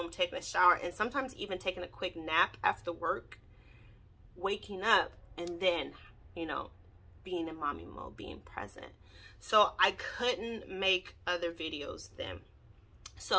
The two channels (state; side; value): identical; both; correlation 1.00